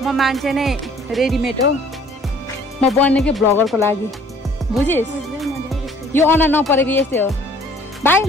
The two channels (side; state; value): both; normal; correlation 0.56